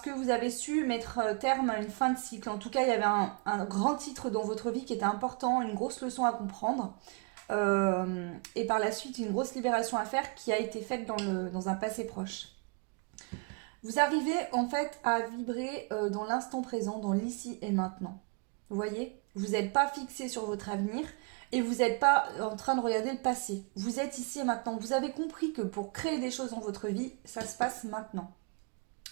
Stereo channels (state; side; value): quieter; left; 34.1 dB